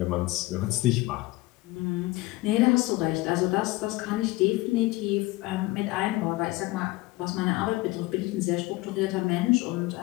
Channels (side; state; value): right; quieter; 20.5 dB